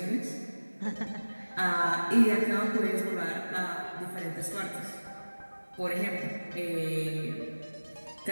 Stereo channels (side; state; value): both; inverted; correlation -1.00